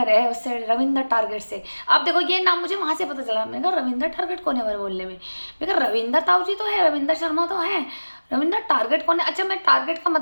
है उससे, रविंद्र टारगेट से। अब देखो ये नाम मुझे वहाँ से पता चला। मैंने कहा रविंद्र टारगेट कौन है हमारे बोलने में? मैं कहा रविंद्र ताऊ जी तो है, रविंद्र शर्मा तो है, रविंद्र टारगेट कौन है? अच्छा मैं टारगेट का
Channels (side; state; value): both; inverted; correlation -1.00